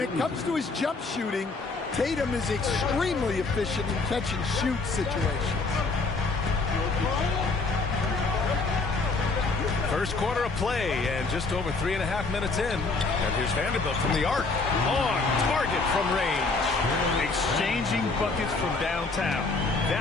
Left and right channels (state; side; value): quieter; right; 3.8 dB